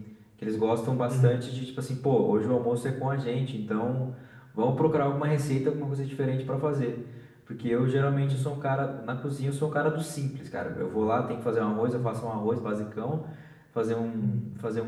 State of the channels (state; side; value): identical; both; correlation 1.00